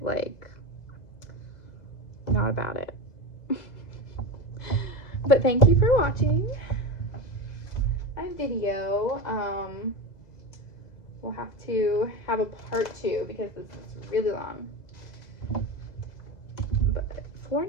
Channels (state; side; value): late; right; 2.0 ms